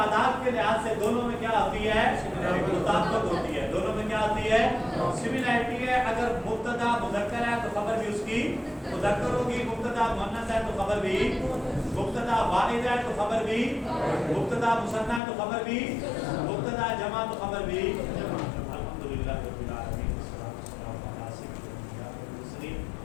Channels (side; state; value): right; drops out; at 15.2 s